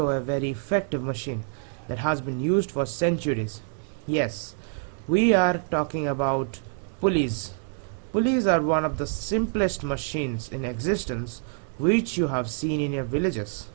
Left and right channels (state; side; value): silent; left; 61 dB below the other